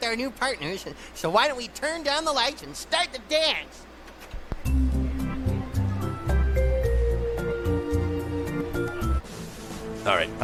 our new partners, so why don't we turn down the lights and start the dance? All right, I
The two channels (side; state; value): both; identical; correlation 1.00